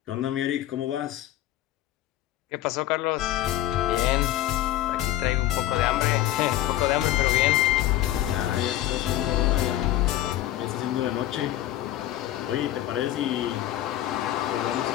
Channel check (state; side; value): quieter; right; 13.9 dB